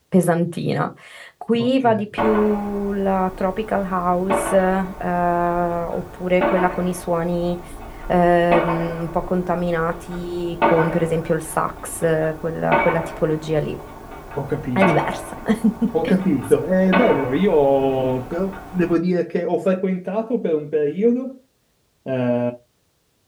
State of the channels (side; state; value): both; identical; correlation 1.00